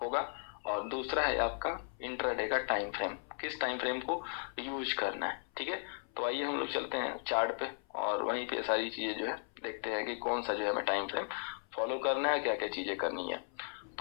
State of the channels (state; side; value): silent; right; 54 dB below the other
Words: होगा। और दूसरा है आपका इंट्राडे का टाइम फ्रेम, किस टाइम फ्रेम को यूज करना है। ठीक है, तो आइए हम लोग चलते हैं चार्ट पे और वहीं पे सारी चीजें जो है देखते हैं कि कौन सा जो है हमें टाइम फ्रेम फॉलो करना है, क्या क्या चीजें करनी है।